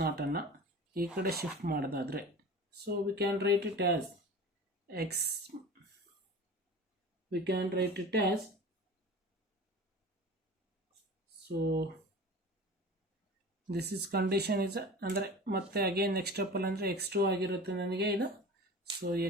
naught ಅನ್ನು ಈ ಕಡೆ ಶಿಫ್ಟ್ ಮಾಡೋದಾದರೆ, so we can write it as X, V can write it as, so this is condition is ಅಂದರೆ ಮತ್ತೆ ಅಗೇನ್ ನೆಕ್ಸ್ಟ್ ಸ್ಟೆಪ್ಪಲ್ಲಿ ಅಂದರೆ x2 ಆಗಿರುತ್ತೆ ನನಗೆ ಇದು. So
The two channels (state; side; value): normal; both; correlation 0.36